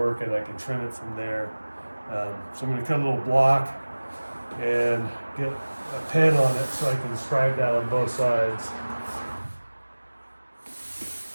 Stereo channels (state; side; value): inverted; both; correlation -1.00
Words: and I can trim it from there. So I'm going to cut a little block and get a pen on it so I can scribe that on both sides.